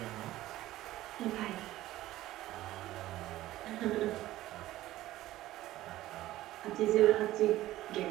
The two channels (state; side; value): quieter; left; 15.4 dB